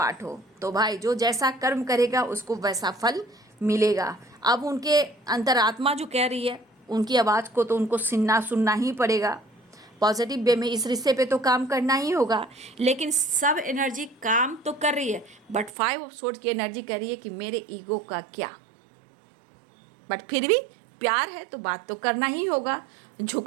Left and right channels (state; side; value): drops out; left; at 15.8 s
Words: हो, तो भाई जो जैसा कर्म करेगा उसको वैसा फल मिलेगा। अब उनके अंतरात्मा जो कह रही है, उनकी आवाज़ को तो उनको सुनना ही पड़ेगा। पॉजिटिव वे में इस रिश्ते पे तो काम करना ही होगा। लेकिन सब एनर्जी काम तो कर रही है, बट 5 ऑफ सोर्ड्स की एनर्जी कह रही है कि मेरे ईगो का क्या। बट फिर भी प्यार है तो बात तो करना ही होगा,